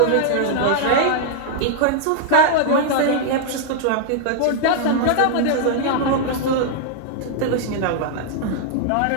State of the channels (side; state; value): both; different; correlation -0.01